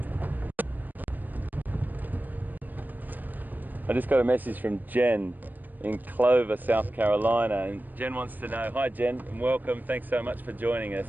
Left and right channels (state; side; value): late; left; 0.087 ms